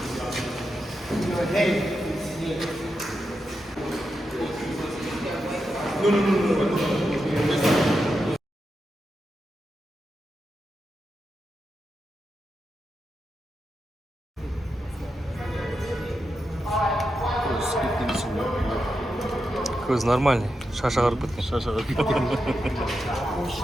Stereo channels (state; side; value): normal; both; correlation 0.87